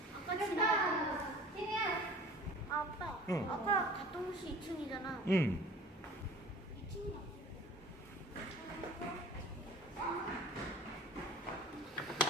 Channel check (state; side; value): normal; both; correlation 0.44